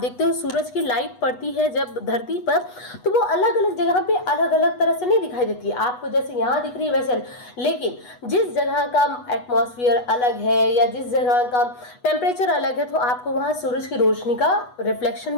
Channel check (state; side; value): late; right; 8.1 ms